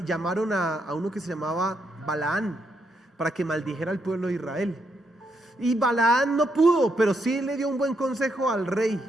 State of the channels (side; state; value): both; normal; correlation 0.78